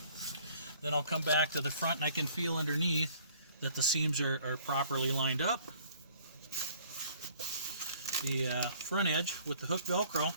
Then I'll come back to the front, and I can feel underneath that the seams are properly lined up. The front edge with the hook Velcro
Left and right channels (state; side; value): inverted; both; correlation -0.57